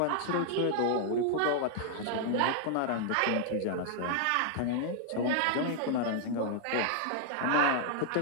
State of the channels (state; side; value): different; both; correlation -0.01